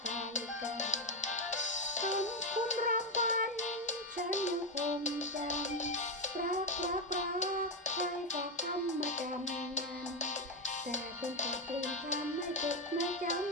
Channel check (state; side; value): normal; both; correlation 0.07